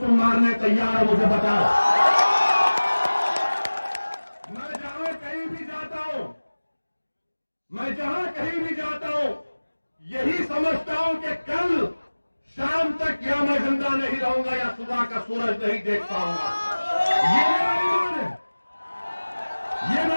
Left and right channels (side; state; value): both; inverted; correlation -1.00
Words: मारने तैयार हो, मुझे बताओ। मैं जहां कहीं भी जाता हूं, मैं जहां कहीं भी जाता हूं, यही समझता हूं कि कल शाम तक या मैं जिंदा नहीं रहूंगा या सुबह का सूरज नहीं देख पाऊंगा। ये मेरा ईमान है, ये